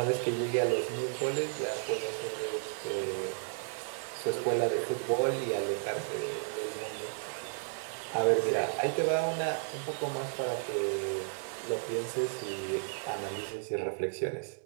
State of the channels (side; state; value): left; silent; 56 dB below the other